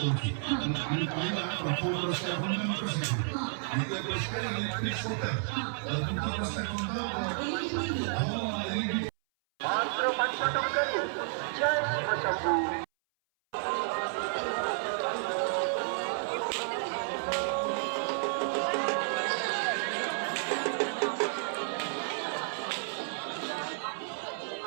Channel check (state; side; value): silent; left; 57 dB below the other